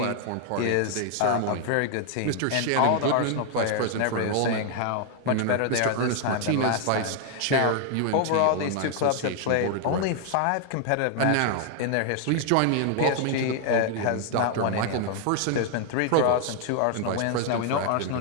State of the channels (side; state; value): both; different; correlation 0.00